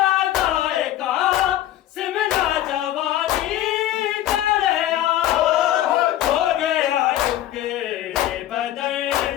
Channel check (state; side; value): quieter; right; 13.0 dB